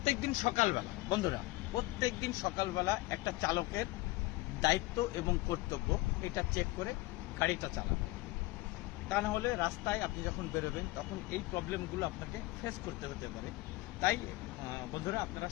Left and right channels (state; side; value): quieter; right; 20.1 dB